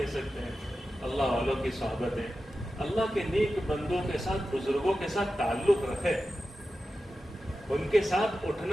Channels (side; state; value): both; normal; correlation 0.92